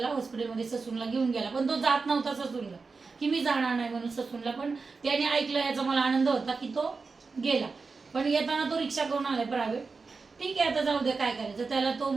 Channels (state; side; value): quieter; left; 4.4 dB